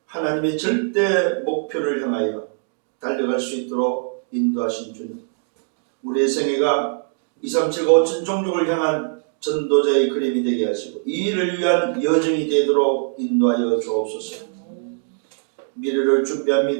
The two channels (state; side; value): silent; left; 64 dB below the other